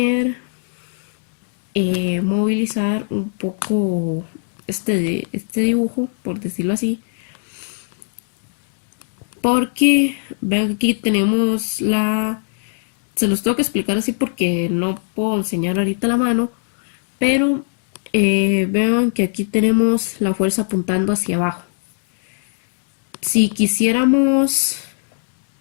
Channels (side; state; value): right; silent; digital silence